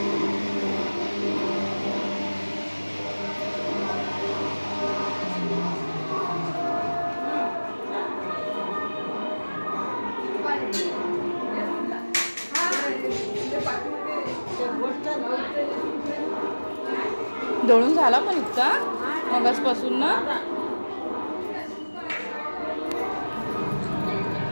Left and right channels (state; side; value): inverted; both; correlation -1.00